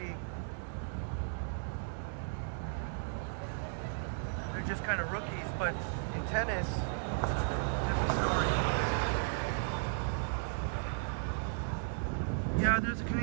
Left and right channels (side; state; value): left; silent; digital silence